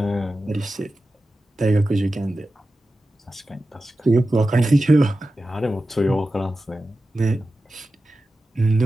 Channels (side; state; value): both; normal; correlation 0.93